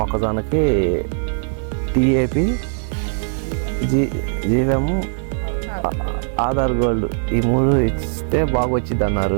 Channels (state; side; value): silent; left; 65 dB below the other